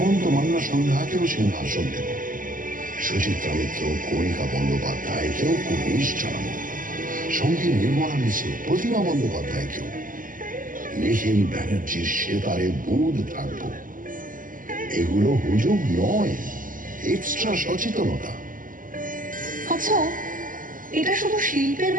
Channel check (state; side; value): late; left; 0.39 ms